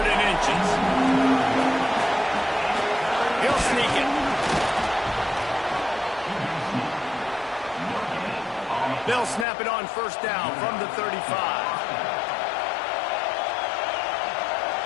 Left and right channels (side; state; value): right; drops out; at 9.5 s